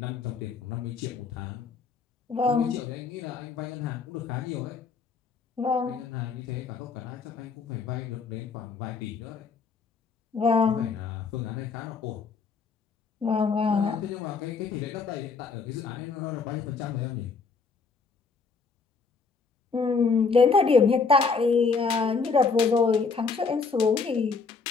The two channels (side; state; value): right; quieter; 4.9 dB